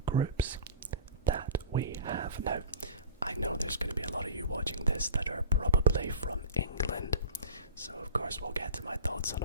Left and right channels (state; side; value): inverted; both; correlation -0.37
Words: groups that we have. Now, I know there's going to be a lot of you watching this that are probably from England, so of course we'll get to my thoughts on